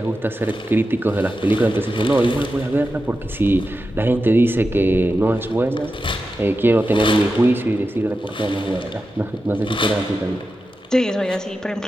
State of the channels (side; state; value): both; normal; correlation 0.91